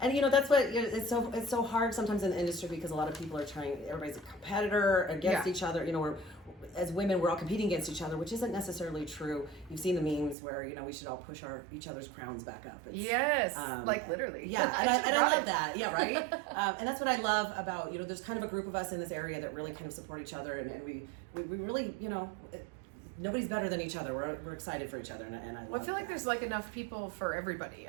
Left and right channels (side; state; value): left; drops out; at 10.4 s